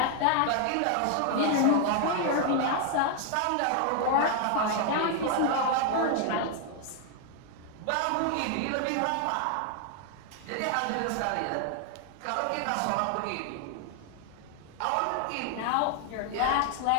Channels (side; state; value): both; different; correlation 0.00